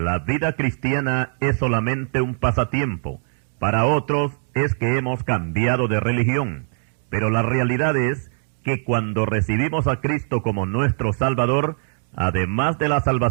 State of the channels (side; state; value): left; silent; digital silence